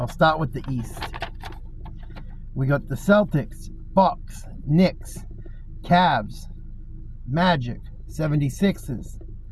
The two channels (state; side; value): identical; both; correlation 1.00